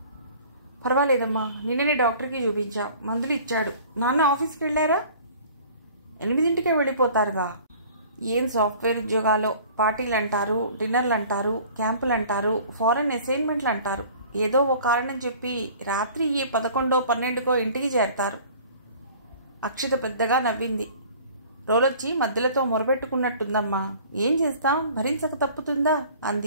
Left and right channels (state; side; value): inverted; both; correlation -0.48